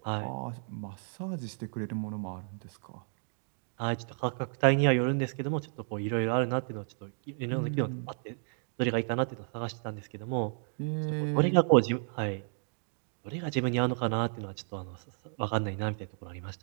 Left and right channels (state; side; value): silent; left; 56 dB below the other